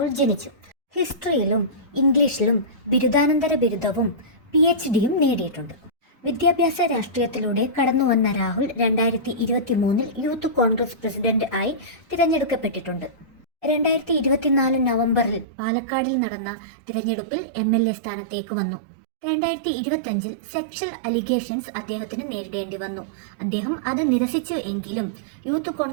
ജനിച്ചു. ഹിസ്റ്ററിയിലും ഇംഗ്ലീഷിലും ബിരുദാനന്തര ബിരുദവും PhDയും നേടിയിട്ടുണ്ട്. വിദ്യാഭ്യാസ രാഷ്ട്രീയത്തിലൂടെ കടന്നുവന്ന രാഹുൽ 2023 യൂത്ത് കോൺഗ്രസ് പ്രസിഡന്റ് ആയി തിരഞ്ഞെടുക്കപ്പെട്ടിട്ടുണ്ട്. 2024 നവംബറിൽ പാലക്കാടിൽ നടന്ന തിരഞ്ഞെടുപ്പിൽ MLA സ്ഥാനത്തേക്ക് വന്നു. 2025 സെക്ഷൽ അലിഗേഷൻസ് അദ്ദേഹത്തിന് നേരിടേണ്ടി വന്നു. അദ്ദേഹം അത് നിരസിച്ചു എങ്കിലും യൂത്ത്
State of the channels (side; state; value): left; drops out; at 15.5 s